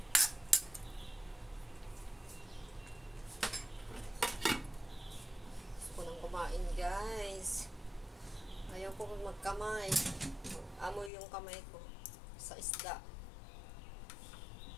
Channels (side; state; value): right; drops out; at 11.1 s